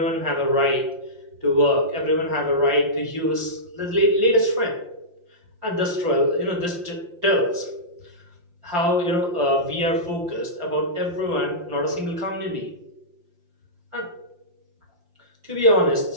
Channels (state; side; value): late; left; 5.7 ms